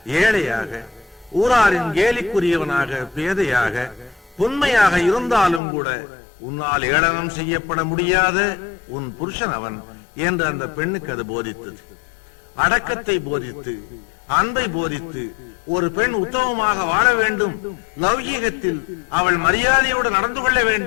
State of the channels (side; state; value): right; drops out; at 5.6 s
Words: ஏழையாக, ஊராரின் கேலிக்குரியவனாக, பேதையாக, உண்மையாக இருந்தாலும் கூட உன்னால் ஏளனம் செய்யப்பட முடியாத உன் புருஷன் அவன் என்று அந்த பெண்ணுக்கு அது போதித்தது. அடக்கத்தை போதித்து, அன்பை போதித்து, ஒரு பெண் உத்தமமாக வாழ வேண்டும், லௌகீகத்தில் அவள் மரியாதையோடு நடந்து கொள்ள